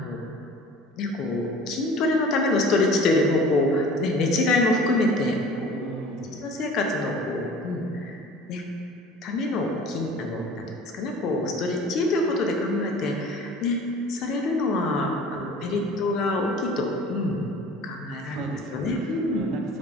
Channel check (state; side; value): normal; both; correlation 0.44